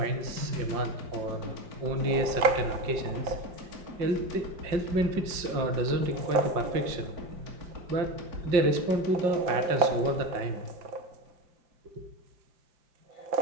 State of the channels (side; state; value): left; late; 5.7 ms